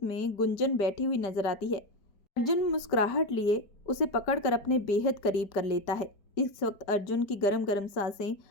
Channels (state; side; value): late; right; 5.1 ms